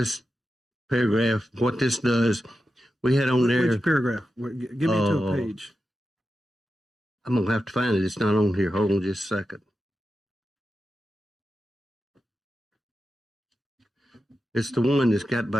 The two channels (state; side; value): normal; both; correlation 0.90